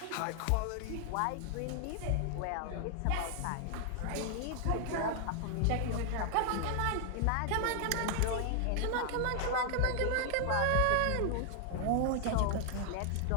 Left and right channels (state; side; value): different; both; correlation 0.00